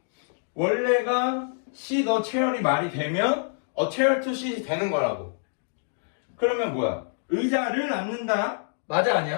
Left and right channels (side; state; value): right; silent; digital silence